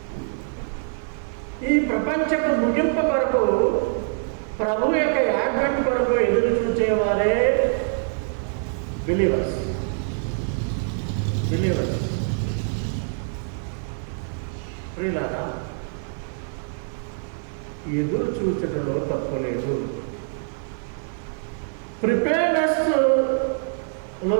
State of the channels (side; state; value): left; silent; digital silence